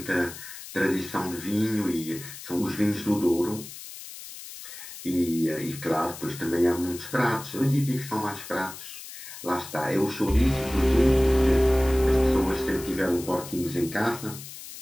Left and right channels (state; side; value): noise; left; hiss, 13 dB below the sound